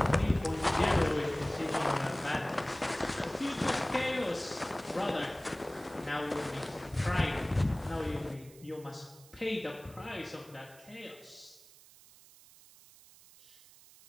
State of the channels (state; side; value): noise; right; hiss, 23 dB below the sound